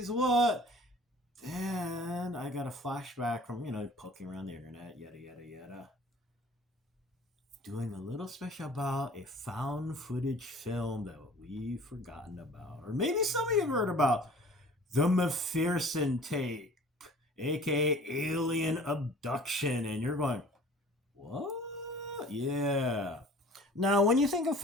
what? Then I got a flashback from, poking around the internet, yada yada yada. Doing a little special about a found footage film that we've forgotten about. Or maybe some of you have heard about. The McPherson tape, aka alien abduction, and you're going, what? Yeah. Now, when you think of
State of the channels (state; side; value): normal; both; correlation 0.47